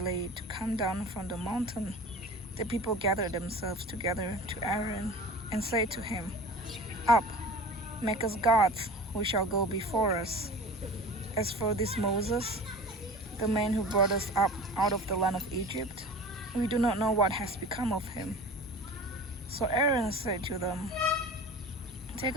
to come down from the mountain, the people gathered themselves together to Aaron and said to him, "Up, make us gods who shall go before us. As for this Moses, the man who brought us up out of the land of Egypt, we do not know what has become of him." So Aaron said to them, "Take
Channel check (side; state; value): both; normal; correlation 0.38